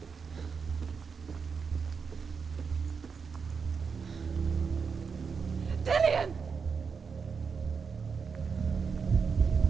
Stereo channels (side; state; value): left; quieter; 5.7 dB